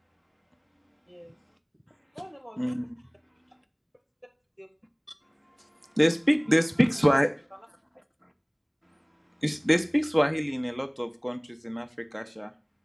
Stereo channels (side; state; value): both; identical; correlation 1.00